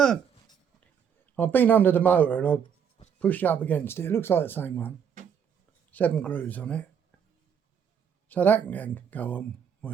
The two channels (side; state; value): left; quieter; 7.7 dB